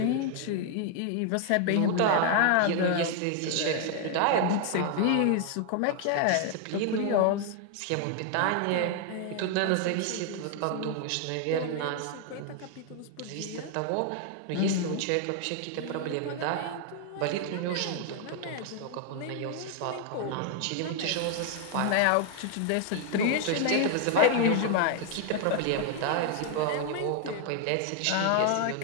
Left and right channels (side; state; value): both; different; correlation 0.00